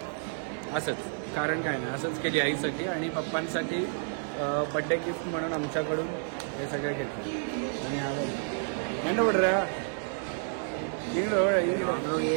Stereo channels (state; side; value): silent; left; 58 dB below the other